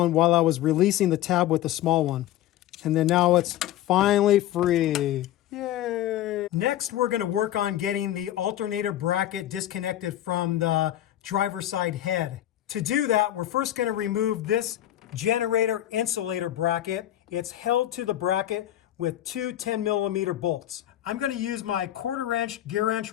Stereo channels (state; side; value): quieter; right; 13.1 dB